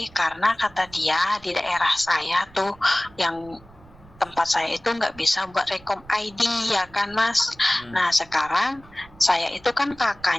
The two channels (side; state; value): right; noise; rumble, 24 dB below the sound